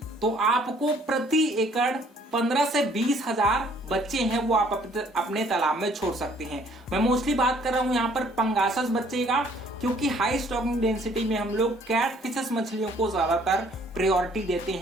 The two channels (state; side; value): normal; both; correlation 0.60